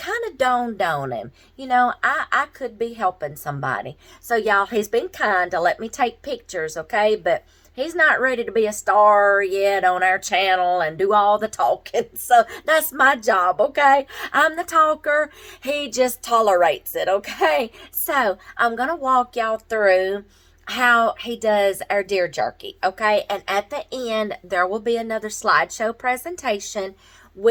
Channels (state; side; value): identical; both; correlation 1.00